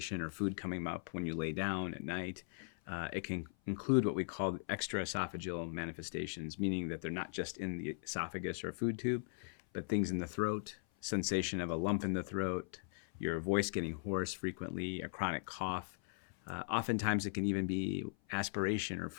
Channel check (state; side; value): silent; right; 52 dB below the other